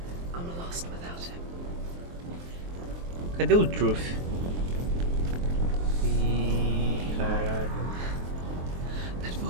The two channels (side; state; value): left; late; 23 ms